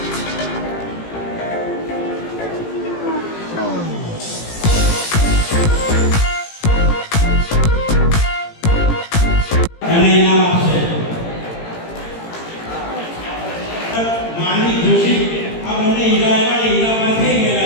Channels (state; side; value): late; right; 18 ms